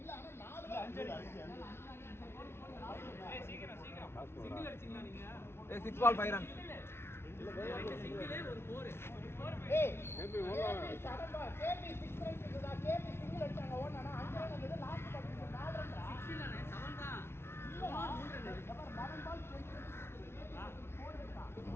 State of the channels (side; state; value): right; late; 0.12 ms